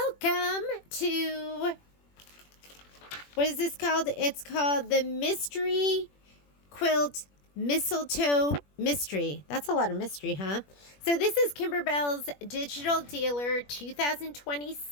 to, what is this called? It's called the Mystery Quilt Mistletoe Mystery. That's a lot of mystery, huh? So this is Kimberbell's Digital Dealer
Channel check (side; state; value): right; late; 21 ms